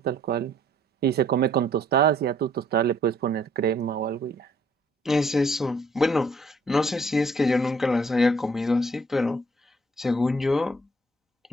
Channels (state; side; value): normal; both; correlation 0.62